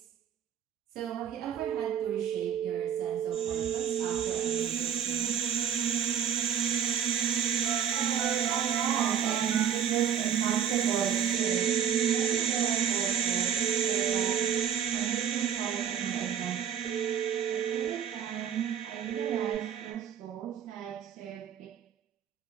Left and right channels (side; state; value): left; quieter; 8.6 dB